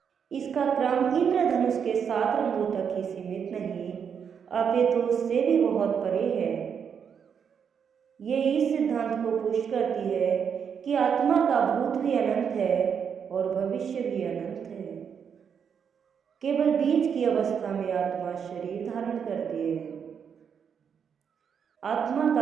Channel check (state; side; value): quieter; left; 7.2 dB